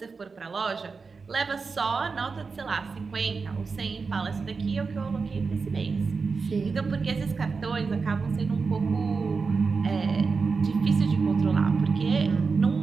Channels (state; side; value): quieter; left; 4.7 dB